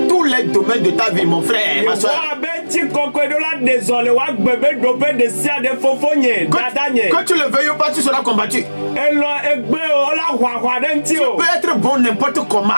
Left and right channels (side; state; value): both; inverted; correlation -1.00